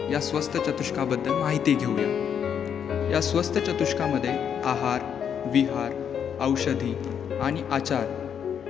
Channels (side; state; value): right; quieter; 8.1 dB